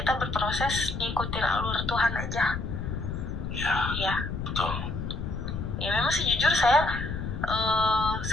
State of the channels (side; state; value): left; noise; rumble, 5 dB below the sound